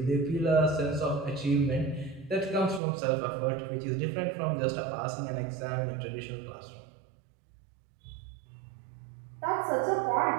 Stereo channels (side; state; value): left; drops out; at 2.8 s